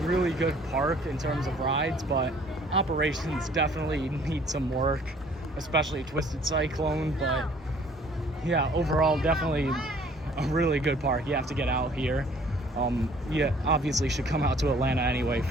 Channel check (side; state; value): both; normal; correlation 0.56